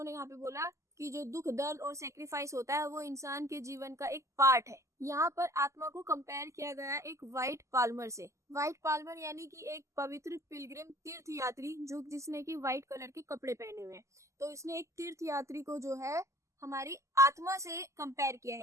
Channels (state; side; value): late; left; 0.14 ms